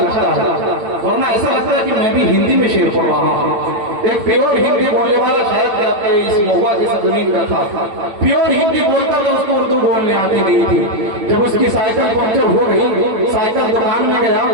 है, वरना ऐसा लगता है कि मैं भी हिंदी में शेर पढ़ रहा हूँ। एक प्योर हिंदी बोलने वाला शायद आपके इस महुआ की जमीन का था, प्योर हिंदी बोलता तो उसको उर्दू बोलने आती नहीं थी। जब उसकी साइकिल पंक्चर हो गई, साइकिल दुकान में गया,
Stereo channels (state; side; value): late; left; 8.7 ms